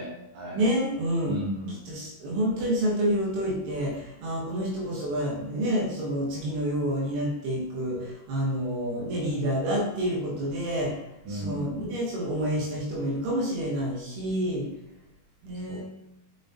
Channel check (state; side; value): late; left; 21 ms